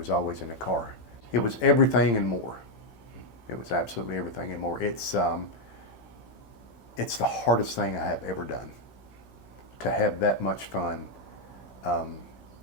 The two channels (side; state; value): right; late; 16 ms